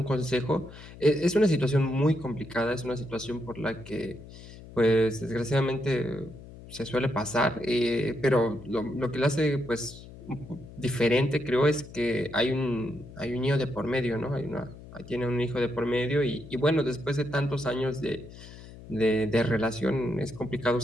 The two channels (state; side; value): noise; left; hum, 17 dB below the sound